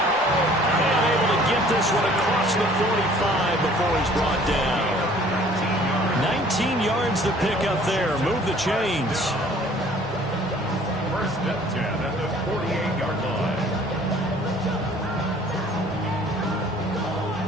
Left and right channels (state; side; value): normal; both; correlation 0.54